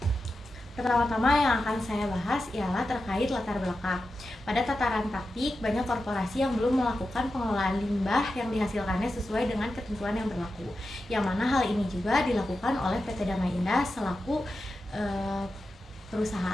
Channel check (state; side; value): normal; both; correlation 0.90